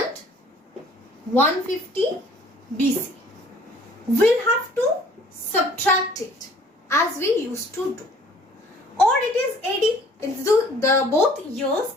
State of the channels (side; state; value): both; normal; correlation 0.55